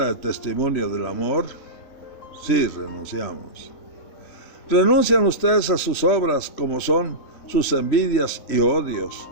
de testimonio del amor. Sí, renunciamos. Renuncian ustedes a sus obras como son sus envidias y odios,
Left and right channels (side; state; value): right; late; 3.1 ms